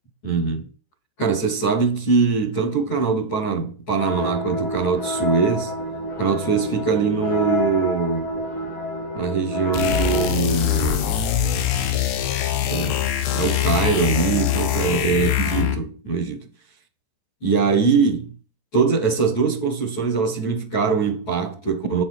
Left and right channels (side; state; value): right; late; 14 ms